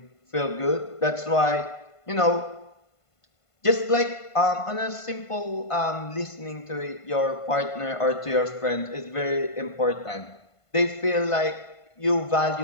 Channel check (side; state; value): right; late; 1.5 ms